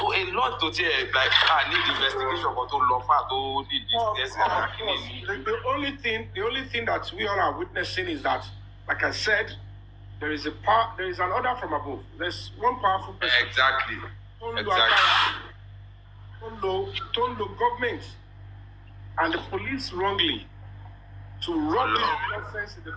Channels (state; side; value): identical; both; correlation 1.00